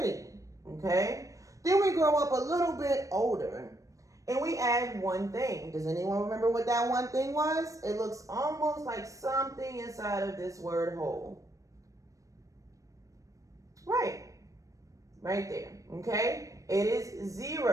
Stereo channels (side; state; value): left; late; 0.16 ms